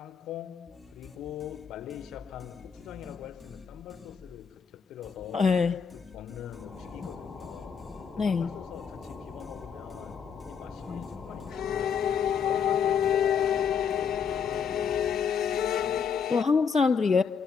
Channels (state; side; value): quieter; right; 6.6 dB